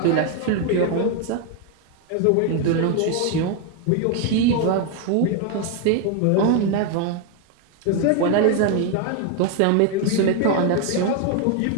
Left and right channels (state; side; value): different; both; correlation 0.01